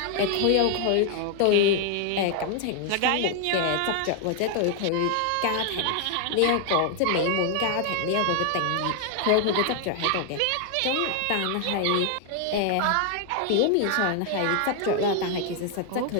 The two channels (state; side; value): different; both; correlation 0.00